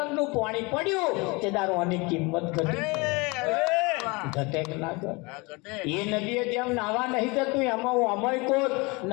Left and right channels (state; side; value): quieter; right; 26.7 dB